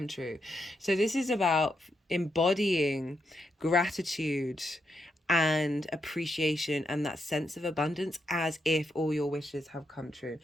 true. So this is about embodying gratitude and appreciation and that sense of abundance as if all your wishes have come true.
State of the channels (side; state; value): both; normal; correlation 0.82